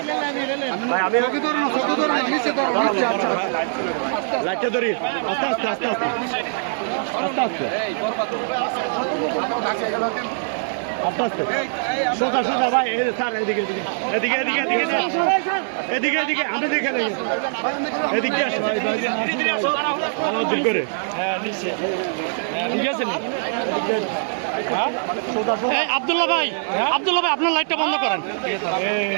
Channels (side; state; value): left; silent; digital silence